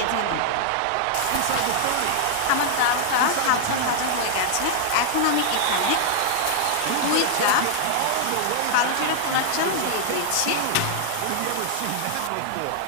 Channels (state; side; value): different; both; correlation -0.01